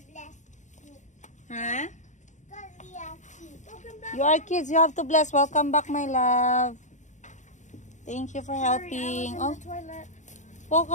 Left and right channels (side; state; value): right; late; 0.35 ms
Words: bless you. Ha? Because we are kids. You are kids, you have to bless. Welcome back, my love. Thank you for helping. I was in the toilet. Oh,